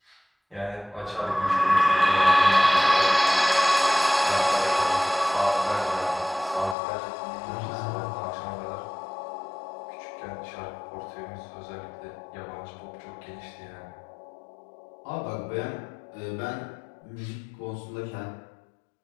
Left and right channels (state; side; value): drops out; right; at 6.8 s